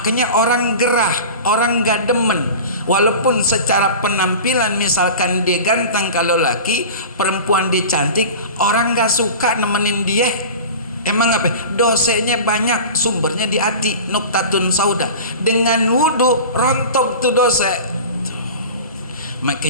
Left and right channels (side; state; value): both; inverted; correlation -0.34